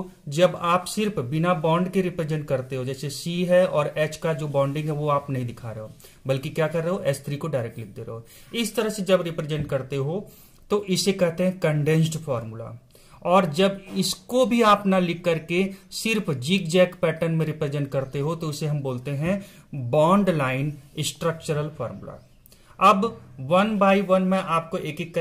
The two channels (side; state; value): both; identical; correlation 1.00